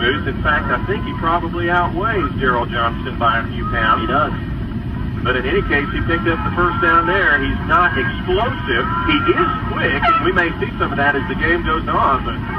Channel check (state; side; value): identical; both; correlation 1.00